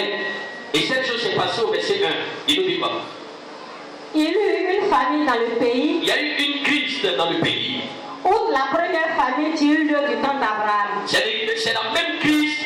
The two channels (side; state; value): both; identical; correlation 1.00